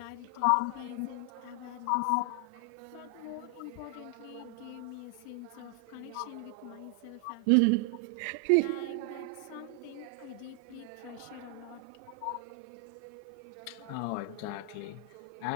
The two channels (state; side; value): different; both; correlation 0.01